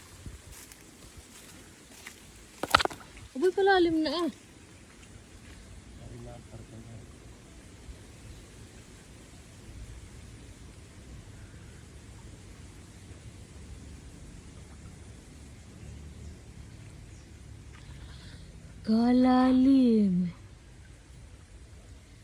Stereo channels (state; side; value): identical; both; correlation 1.00